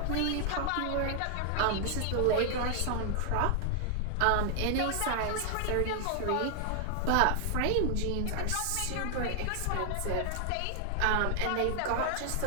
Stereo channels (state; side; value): different; both; correlation 0.00